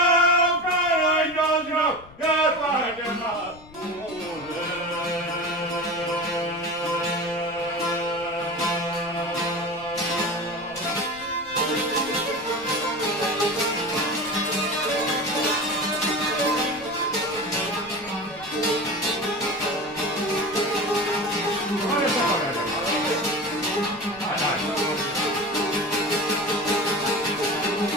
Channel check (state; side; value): noise; left; rumble, 22 dB below the sound